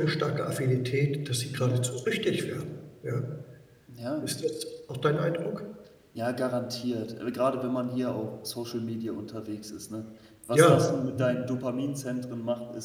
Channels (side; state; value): both; identical; correlation 1.00